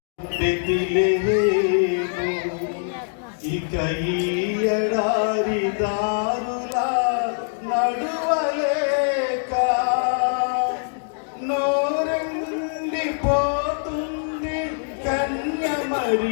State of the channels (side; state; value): right; silent; digital silence